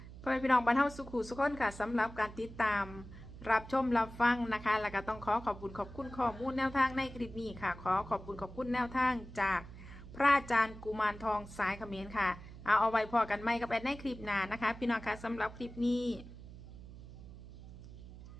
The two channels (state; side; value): noise; right; hum, 15 dB below the sound